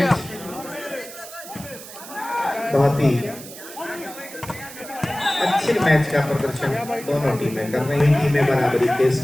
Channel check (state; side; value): noise; right; hiss, 14 dB below the sound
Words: बहुत ही अच्छे मैच का प्रदर्शन दोनों टीमें कर रही हैं। टीमें बराबरी के